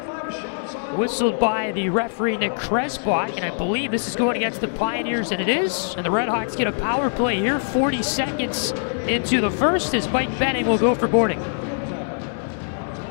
whistled by the referee Nick Kresbach, and I believe this is going against the Pioneers, and it is. And the Redhawks get a power play here, 40 seconds into the first, as Mike Benning will go for boarding.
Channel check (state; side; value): silent; right; digital silence